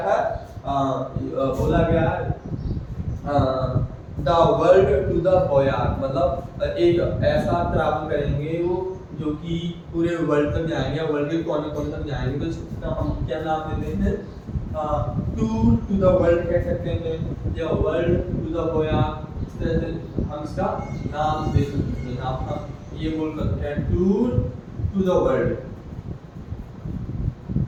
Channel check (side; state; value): both; identical; correlation 1.00